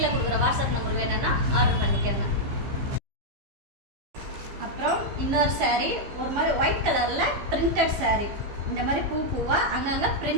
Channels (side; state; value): left; late; 15 ms